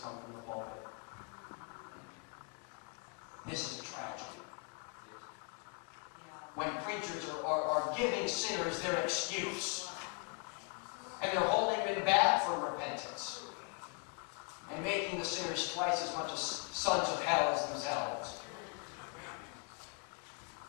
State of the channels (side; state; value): right; quieter; 33.3 dB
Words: come from the pulpit. This is a tragedy. When preachers are giving sinners their excuse, and they're holding them back from repentance, and making the sinners twice as much as sons of hell as themselves.